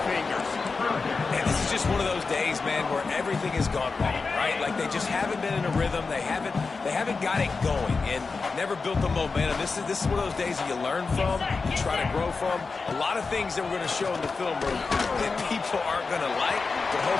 fingers. And this is just one of those days, man, where everything has gone wrong, right? Like they just haven't been in a rhythm. They haven't got it going and never built the momentum. This is one of those days that you learn from, you try to grow from. A lot of things that we're going to show in the film room that people aren't going to like, but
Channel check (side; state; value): right; quieter; 4.4 dB